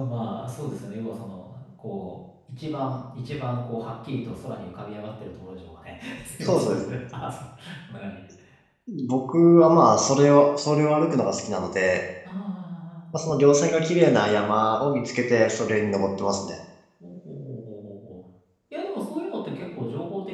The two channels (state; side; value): identical; both; correlation 1.00